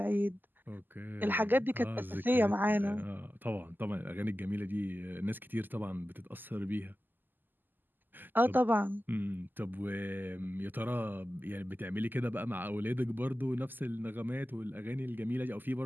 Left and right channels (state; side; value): late; left; 0.089 ms